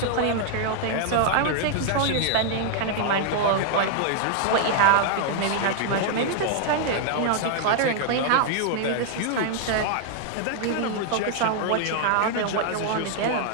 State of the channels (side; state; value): both; different; correlation 0.00